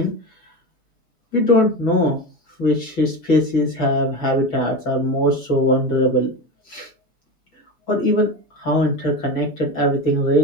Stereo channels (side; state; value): right; late; 6.1 ms